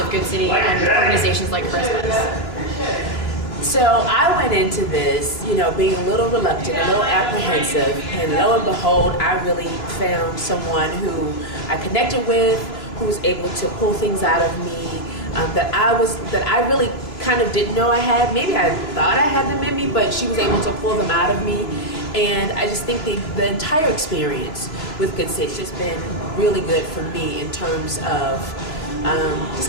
Goodcity and organizations like Charisma's. So I went into this, being a little reluctant, a little apprehensive, and lo and behold, I really found someone who I connected with, who was able to pull things out of me that I really kind of didn't know I had. Maybe I thought I had them in me, but she was able to pull them out of me. And I just think the entire experience with Goodcity has just been really good for me in terms of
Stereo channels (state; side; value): late; right; 3.0 ms